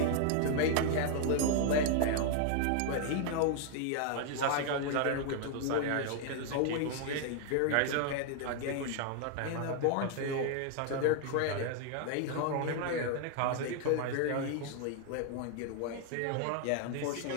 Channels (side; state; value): both; different; correlation 0.00